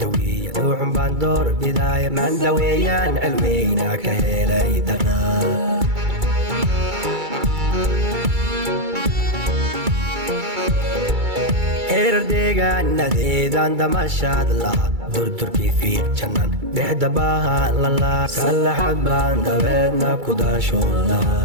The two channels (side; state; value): left; late; 2.3 ms